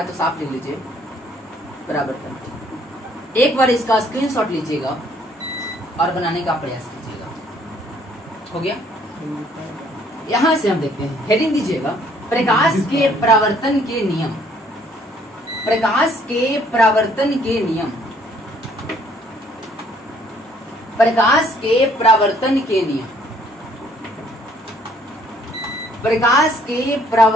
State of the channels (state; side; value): normal; both; correlation 0.63